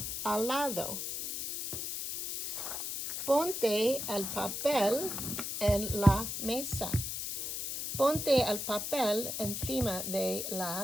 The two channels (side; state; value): left; noise; hiss, 4 dB below the sound